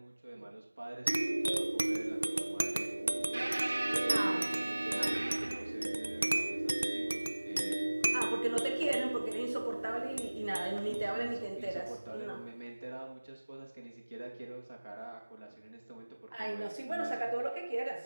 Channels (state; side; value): inverted; both; correlation -1.00